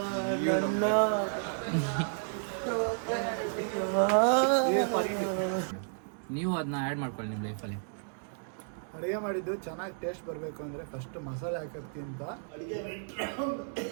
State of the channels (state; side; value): silent; left; digital silence